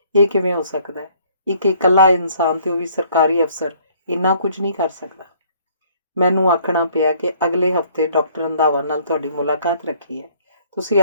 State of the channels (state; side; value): inverted; both; correlation -0.60